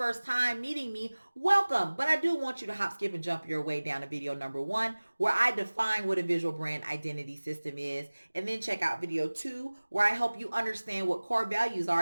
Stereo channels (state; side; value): inverted; both; correlation -1.00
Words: time meeting me, welcome. But I do want you to hop, skip, and jump your way down to video number 1, where I define what a visual brand identity system is, and then check out video 2, where I help you understand what core values